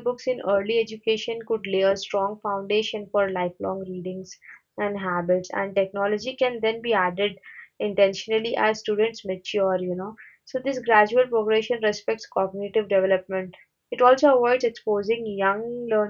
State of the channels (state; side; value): identical; both; correlation 1.00